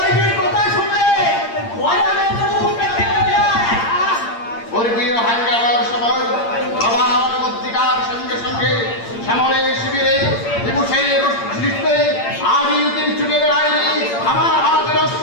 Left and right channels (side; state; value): right; late; 8.7 ms